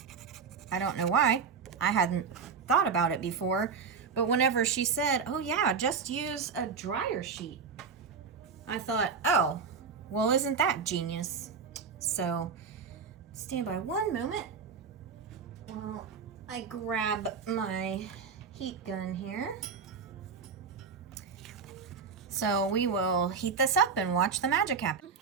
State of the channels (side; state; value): left; quieter; 5.7 dB